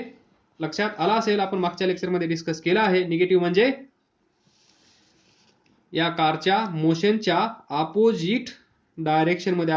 लक्षात आला असेल, आपण मागच्या लेक्चरमध्ये डिस्कस केला आहे. निगेटिव्ह म्हणजे या कारच्या मोशनच्या अपोजिट डायरेक्शन मध्ये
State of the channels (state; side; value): identical; both; correlation 1.00